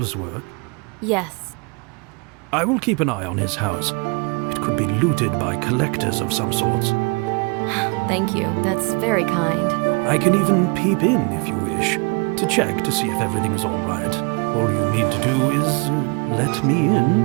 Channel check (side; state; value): left; quieter; 31.1 dB